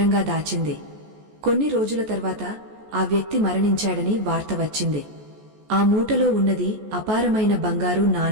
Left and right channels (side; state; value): left; late; 14 ms